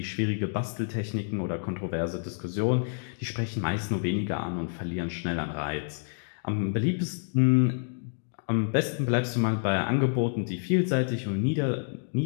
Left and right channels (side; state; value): right; silent; digital silence